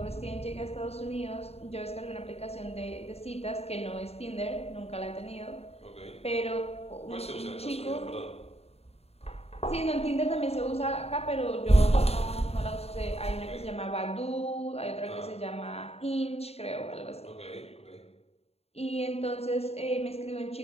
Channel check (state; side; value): late; right; 0.30 ms